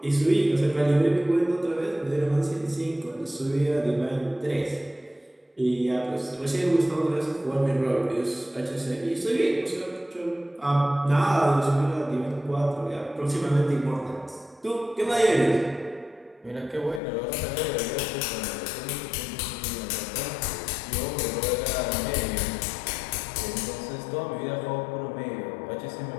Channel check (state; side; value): drops out; right; at 17.0 s